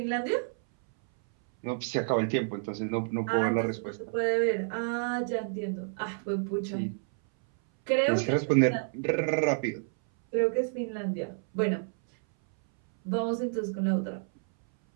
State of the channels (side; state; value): left; silent; 58 dB below the other